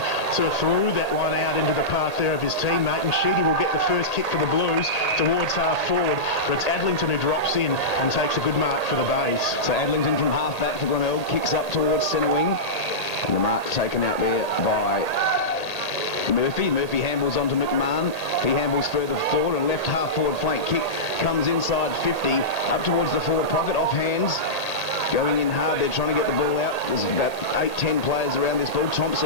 sort of threw that one out into the path there of his teammate, and Sheedy will get the first kick for the Blues towards half forward, but it's Adlington who drops in and takes a good mark for the Bays. So Adlington from half back for Glenelg, kicks up towards centre wing, and the mark taken out there by Murphy. Murphy handballs onto McMahon. He handballs further forward, and left half forward flank kick comes inside 50, up towards the forward pocket, off hands. going in hard. They're trying to get the ball out. There's about 8-10 players around this ball.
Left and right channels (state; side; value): late; right; 1.8 ms